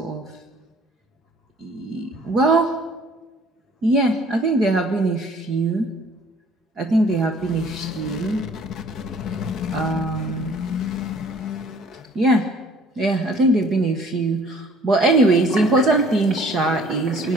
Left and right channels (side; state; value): both; normal; correlation 0.54